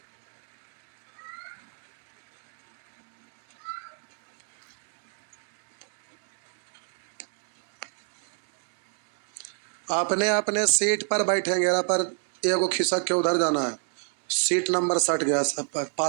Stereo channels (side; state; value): left; silent; 59 dB below the other